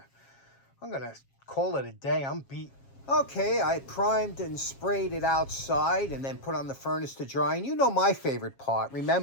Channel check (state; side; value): late; right; 7.4 ms